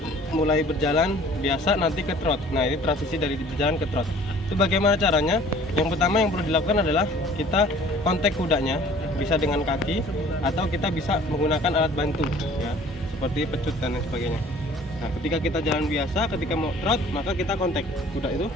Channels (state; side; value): normal; both; correlation 0.51